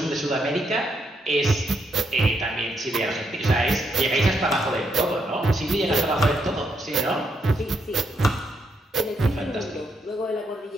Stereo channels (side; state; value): both; normal; correlation 0.77